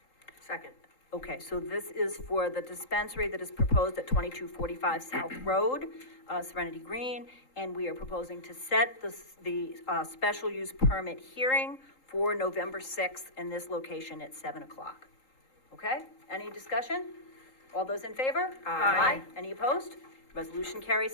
Second. Okay, so this is for the dispensary that is proposed at 2245 South Road, Serenity Green, and we are proposing to set the special use permit hearing for November 6th in this location at 7 o'clock. Okay, any discussion? All those in favor? Aye. Any opposed? Resolution carries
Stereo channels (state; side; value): late; right; 3.8 ms